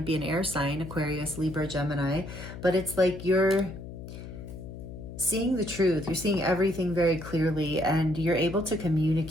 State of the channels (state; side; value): noise; left; hum, 11 dB below the sound